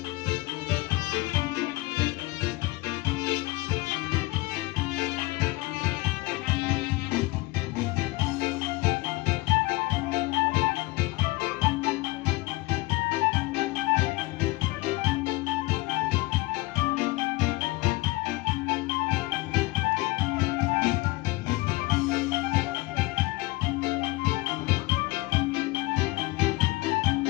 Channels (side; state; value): right; quieter; 21.9 dB